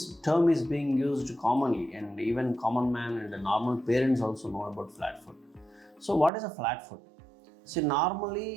term is being used commonly, and even common man and the normal parents also know about flat foot. So what is a flat foot? See,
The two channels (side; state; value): left; drops out; at 6.3 s